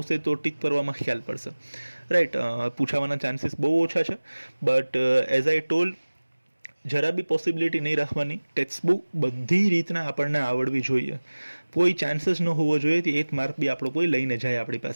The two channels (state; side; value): inverted; both; correlation -1.00